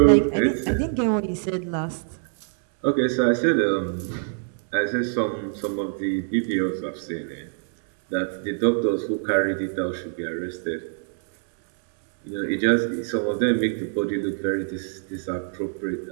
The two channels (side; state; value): left; silent; 62 dB below the other